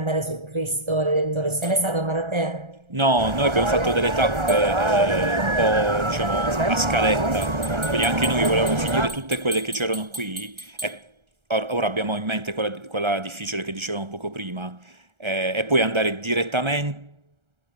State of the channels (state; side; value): late; left; 1.3 ms